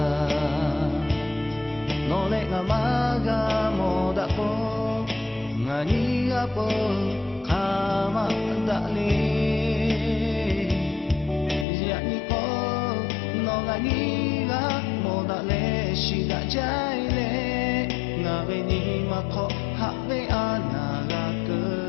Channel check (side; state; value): right; drops out; at 11.7 s